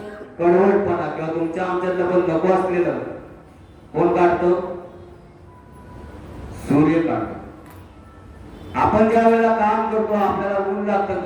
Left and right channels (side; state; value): both; identical; correlation 1.00